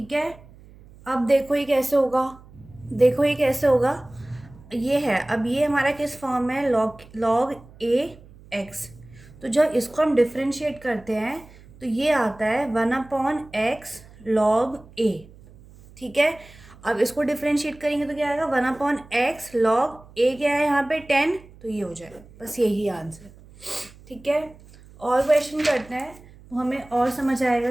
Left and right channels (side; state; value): right; noise; hum, 22 dB below the sound